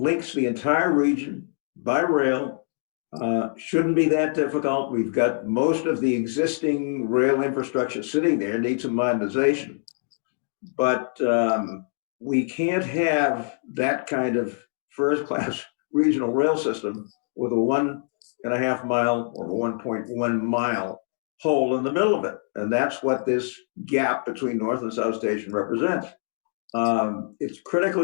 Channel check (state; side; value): silent; right; digital silence